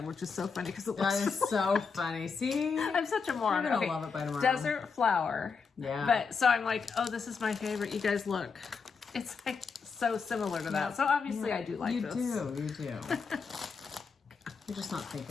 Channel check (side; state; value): right; quieter; 5.4 dB